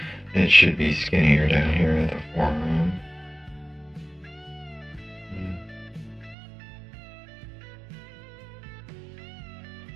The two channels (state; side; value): drops out; left; at 6.4 s